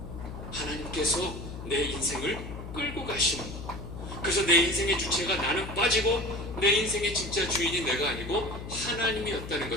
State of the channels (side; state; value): left; noise; hum, 10 dB below the sound